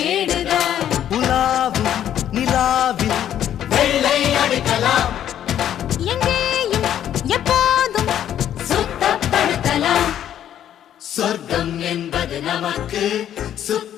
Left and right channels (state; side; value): quieter; right; 10.6 dB